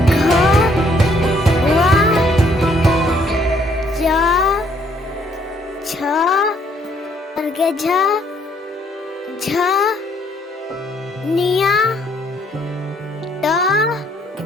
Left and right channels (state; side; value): normal; both; correlation 0.67